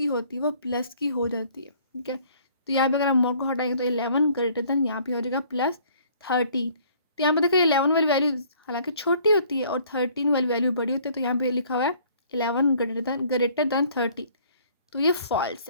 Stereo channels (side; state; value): both; inverted; correlation -0.58